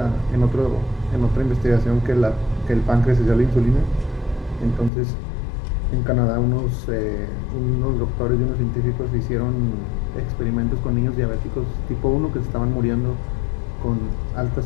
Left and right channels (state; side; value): drops out; right; at 4.9 s